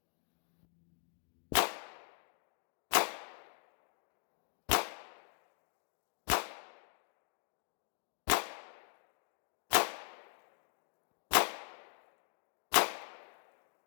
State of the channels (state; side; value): silent; right; digital silence